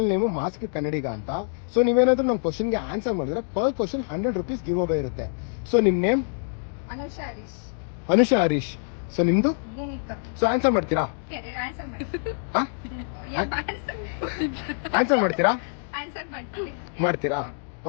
name mask ಕನ್ನಡಿಗ ಅಂತ. So ನೀವೇನಾದ್ರೂ ನಮ್ಮ ಕ್ವಶನ್ಗೆ ಆನ್ಸರ್ ಮಾಡಿದ್ರೆ per question 100 rupees give away ಇರುತ್ತೆ. ಸೊ ನಿಮ್ಮ ನೇಮ್? ಅನುಷಾ ಹರೀಶ್. ಸೊ ನಿಮ್ದು? ಸೊ ಆನ್ಸರ್ ಮಾಡ್ತೀರಾ? ಆನ್ಸರ್ ಮಾಡ್ತೀರಾ? ಮಾಡ್ತೀರಾ?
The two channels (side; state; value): right; silent; digital silence